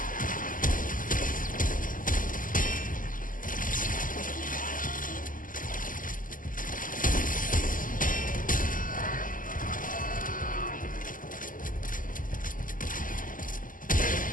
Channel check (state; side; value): late; right; 0.39 ms